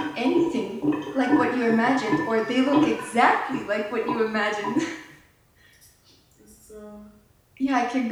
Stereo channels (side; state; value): both; identical; correlation 1.00